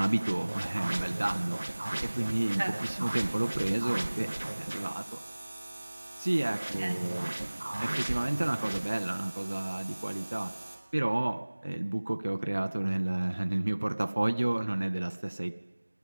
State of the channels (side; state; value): both; inverted; correlation -1.00